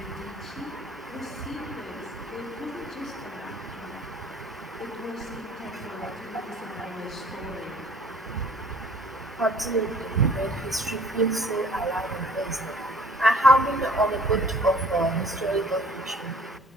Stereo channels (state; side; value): normal; both; correlation 0.53